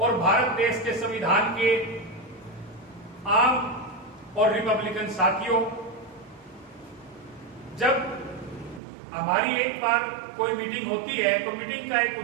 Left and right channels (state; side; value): drops out; left; at 8.8 s